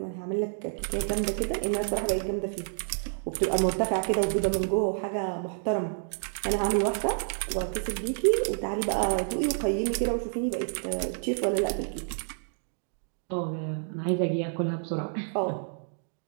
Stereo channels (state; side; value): silent; left; digital silence